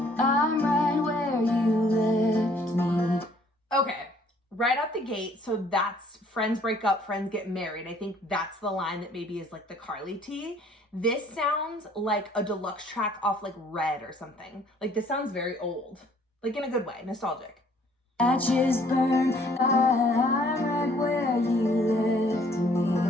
I'm right where you left me. Okay. Right out the gate, so that's friends break up, friends get married. I think that's the line that maybe is like the Karlie tea. This sounds like a deluxe track off like Red or something. Like this sounds very old, like in a good way, nostalgic. Ashes burn, I'm right where you left me.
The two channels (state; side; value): normal; both; correlation 0.60